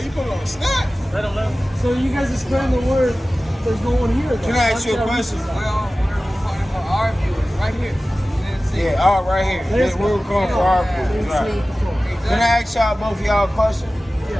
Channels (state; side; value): normal; both; correlation 0.96